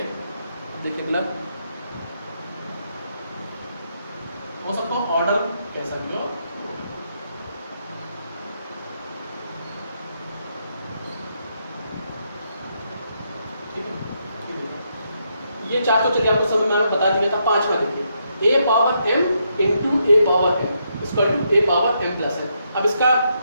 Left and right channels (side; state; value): both; inverted; correlation -0.78